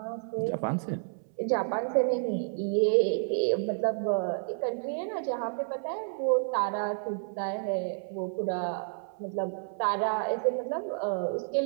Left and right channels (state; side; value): silent; left; 58 dB below the other